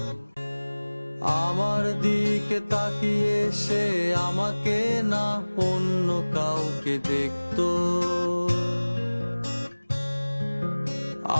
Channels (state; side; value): inverted; both; correlation -1.00